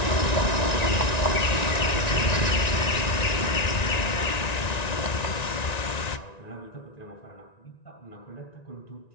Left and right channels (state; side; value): late; right; 1.9 ms